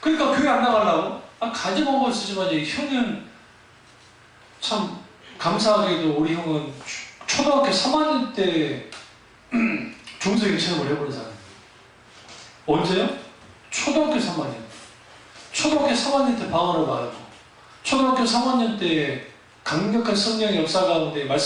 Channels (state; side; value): identical; both; correlation 1.00